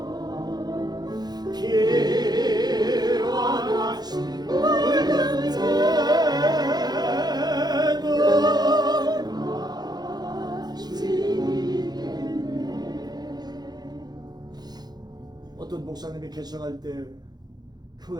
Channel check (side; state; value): left; late; 0.20 ms